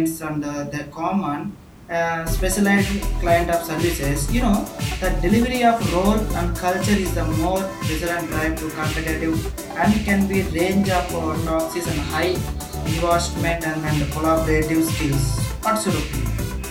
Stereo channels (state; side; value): identical; both; correlation 1.00